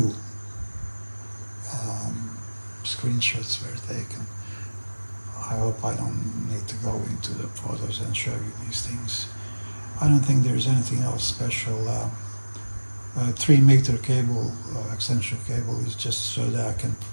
screenshots were taken. I hope I don't need to go into the photos and show you these things. I don't think there's anything else special. 3-meter cable, extension cable, is just so that I can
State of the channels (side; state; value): both; inverted; correlation -1.00